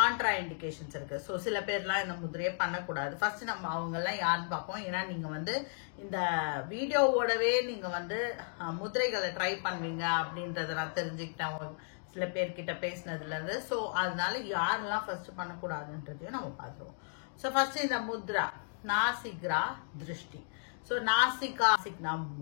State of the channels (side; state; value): right; silent; digital silence